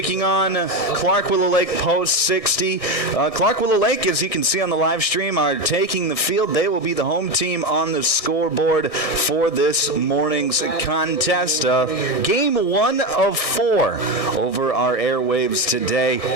on Clark Willow Lake Post 60. Clark Willow Lake, as you can see on the live stream, are taking the field. They will be the home team on the scoreboard for this morning's contest. Game 1 of 4 over our airwaves today.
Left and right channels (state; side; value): late; right; 1.6 ms